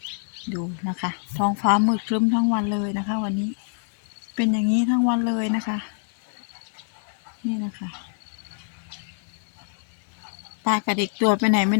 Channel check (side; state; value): right; silent; 61 dB below the other